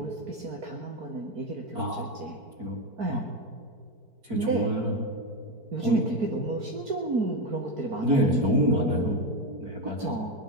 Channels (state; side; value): late; left; 4.5 ms